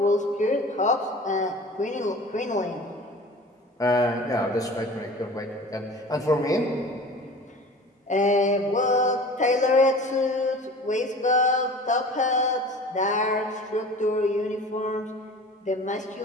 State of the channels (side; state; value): both; normal; correlation 0.41